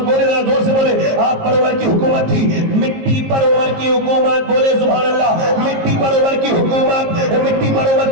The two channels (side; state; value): left; late; 19 ms